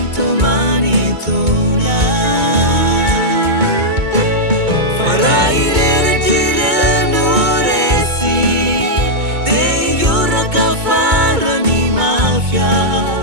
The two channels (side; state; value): left; late; 2.2 ms